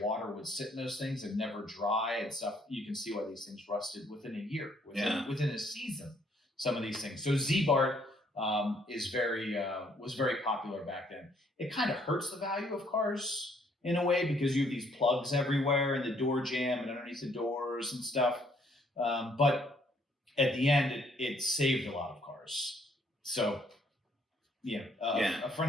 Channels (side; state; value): both; normal; correlation 0.66